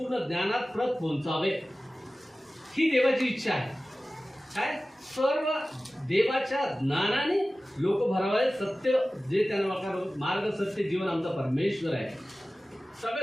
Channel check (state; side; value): normal; both; correlation 0.96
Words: ज्ञानात प्रत पोहोचावे, ही देवाची इच्छा आहे. काय, सर्व देवाच्या ज्ञानाने लोक भरावे. सत्य जे त्यांना मार्ग, सत्य, जीवन आमचा परमेश्वर आहे.